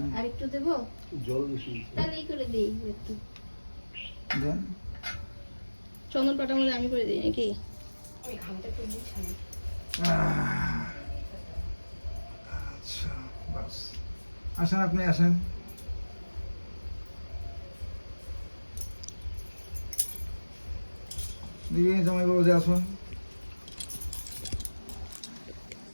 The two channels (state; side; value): inverted; both; correlation -1.00